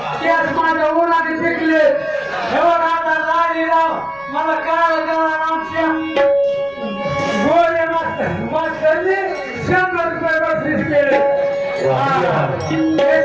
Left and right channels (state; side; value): noise; right; rumble, 27 dB below the sound